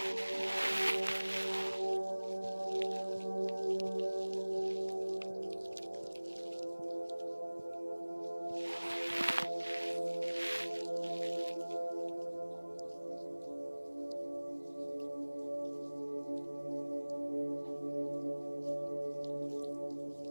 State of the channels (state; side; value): inverted; both; correlation -1.00